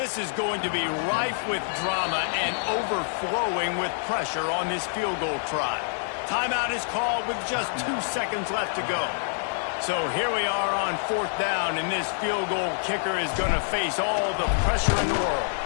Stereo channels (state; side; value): silent; right; 61 dB below the other